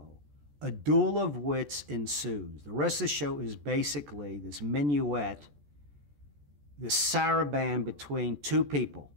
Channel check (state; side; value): late; left; 14 ms